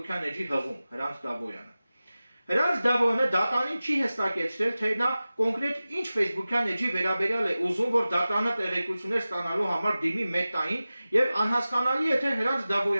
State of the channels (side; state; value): both; inverted; correlation -0.96